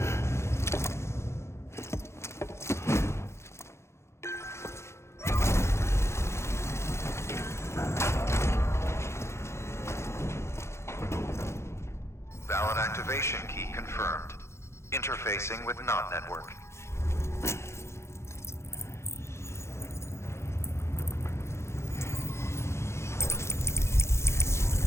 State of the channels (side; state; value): right; late; 0.13 ms